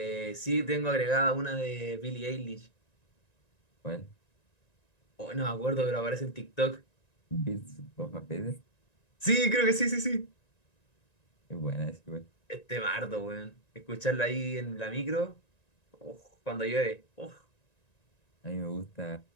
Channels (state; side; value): late; right; 1.9 ms